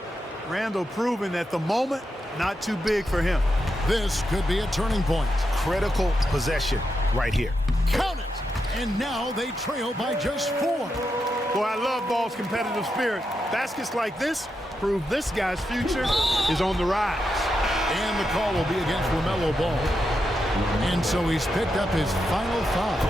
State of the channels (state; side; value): normal; both; correlation 0.85